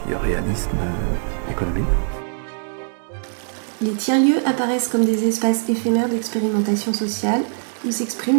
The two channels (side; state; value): left; silent; digital silence